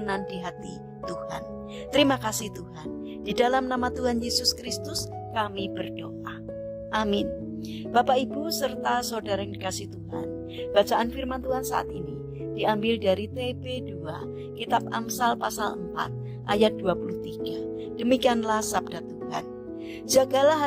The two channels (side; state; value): both; identical; correlation 1.00